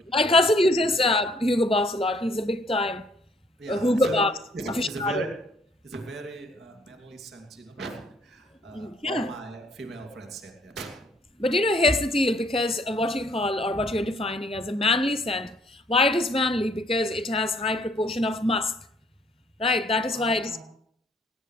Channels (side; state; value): both; normal; correlation 0.63